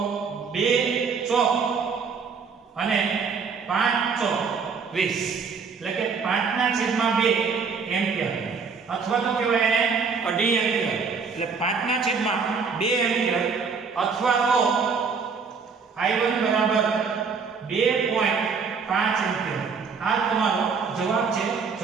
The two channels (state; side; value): quieter; left; 5.5 dB